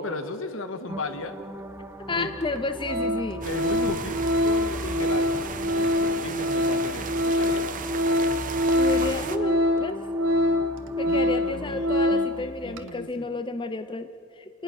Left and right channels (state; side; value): normal; both; correlation 0.32